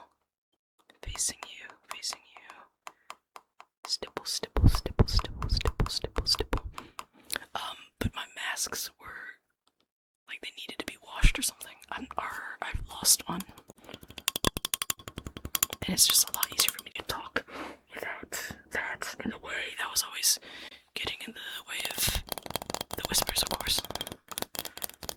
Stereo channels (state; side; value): identical; both; correlation 1.00